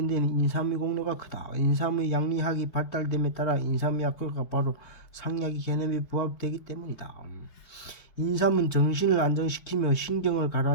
데는 인삼의 공로가 크다. 인삼의 양리학이 발달됨에 따라 인삼의 약효가 바로 상약의 개념에 부합되기 때문이다. 인삼은 정신을 안정시키며 신경을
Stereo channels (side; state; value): right; late; 4.5 ms